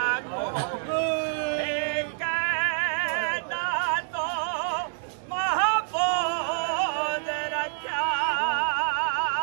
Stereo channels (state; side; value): silent; left; digital silence